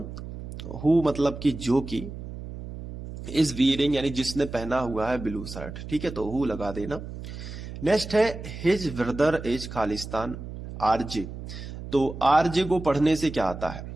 हु मतलब कि जो कि, इज वियरिंग यानी जिसने पहना हुआ है ब्लू शर्ट, ठीक है, तो हु लगा देना। नेक्स्ट है his brother is Khalistan RJ. तो आरजे को पढ़ने से क्या आता है,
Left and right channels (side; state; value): right; noise; hum, 10 dB below the sound